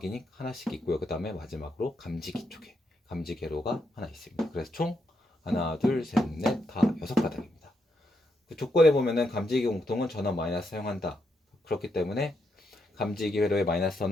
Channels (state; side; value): normal; both; correlation 0.80